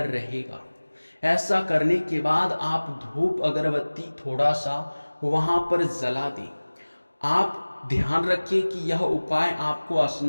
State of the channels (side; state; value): both; inverted; correlation -1.00